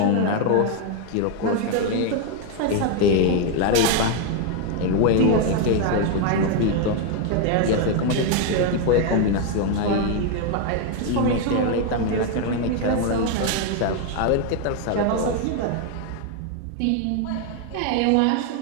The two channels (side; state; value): both; different; correlation 0.01